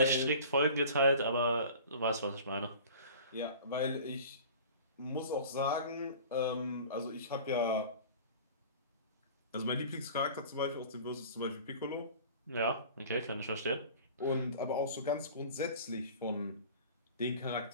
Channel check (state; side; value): inverted; both; correlation -0.42